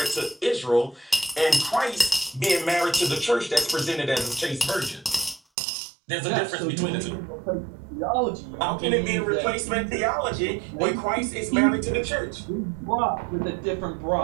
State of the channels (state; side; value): drops out; left; at 5.4 s